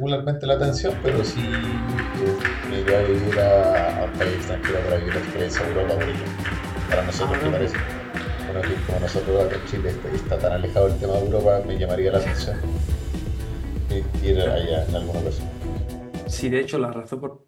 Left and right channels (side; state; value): both; identical; correlation 1.00